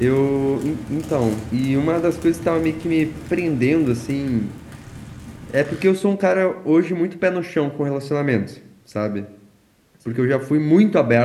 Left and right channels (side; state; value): both; identical; correlation 1.00